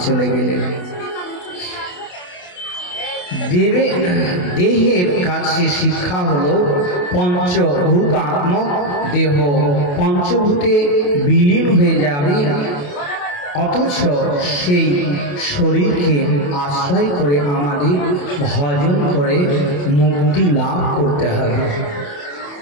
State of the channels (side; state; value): right; late; 28 ms